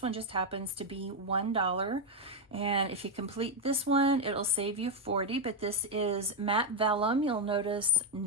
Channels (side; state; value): both; normal; correlation 0.05